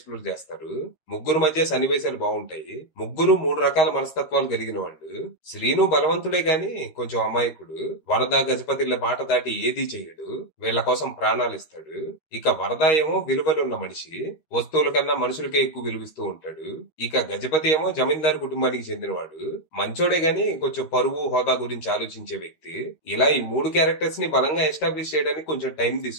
చేస్తారు. ముగ్గురు మధ్య సన్నివేశాలు బాగుంటాయి. ముగ్గురు మూడు రకాల మనస్తత్వాలు కలిగిన వాళ్ళు. శ్రీను బలవంతుడే గాని కొంచెం అమాయకుడు. వరద, గజపతిల మాట దాటి ఏదీ చెయ్యడు. వీళ్ల కోసం ప్రాణాలు ఇస్తాడు. ఇక వరద ఏమో విలువలున్న మనిషి, వస్తువుల కన్నా మనుషులకే ఎక్కువ విలువిస్తూ ఉంటాడు. ఇక గజపతి ఏమో జమీందారు కుటుంబానికి చెందినవాడు. మంచోడే గాని కొంచెం పరువు, హోదా గురించి ఆలోచించే వ్యక్తి. ఇలా ఈ మూడు క్యారెక్టర్స్ ని బలంగా ఎస్టాబ్లిష్ చేయడానికి కొంచెం టైం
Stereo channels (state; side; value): late; right; 13 ms